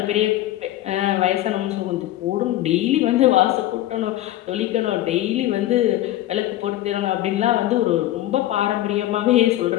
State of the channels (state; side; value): quieter; right; 14.5 dB